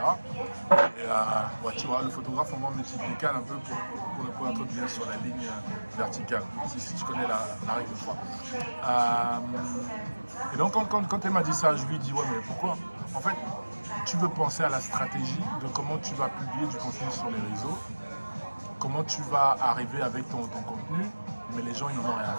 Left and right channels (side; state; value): both; inverted; correlation -1.00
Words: Et ouais, tu vois, le photographe, au moins, me dit décale un peu pour être bien sur la ligne verticale, si tu connais la règle de 3. Et donc, quand elle m'a dit ça, je lui ai dit, ouais, mais pourquoi? En fait, tu veux penser à la stratégie de comment tu vas publier du contenu sur les réseaux, comment tu vas arriver avec ton contenu, mais les gens ils n'en ont rien à